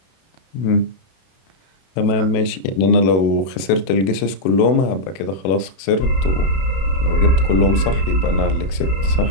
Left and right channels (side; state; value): right; late; 32 ms